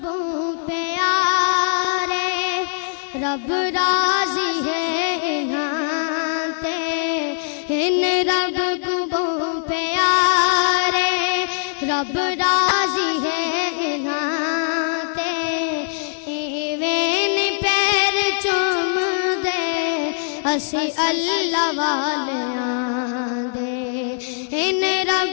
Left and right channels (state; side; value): silent; right; digital silence